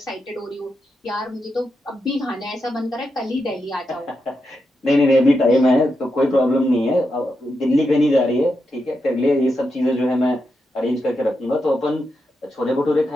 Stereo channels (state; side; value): normal; both; correlation 0.86